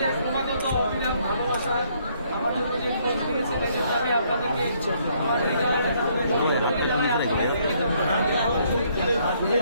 ক্রমাগত অবিরাম ভালোবাসা আমার জন্য যে খোঁজ নিয়েছে সেক্ষেত্রে আমি আপনাদেরকে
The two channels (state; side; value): inverted; both; correlation -0.68